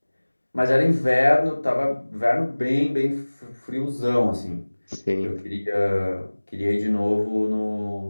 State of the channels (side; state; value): both; inverted; correlation -1.00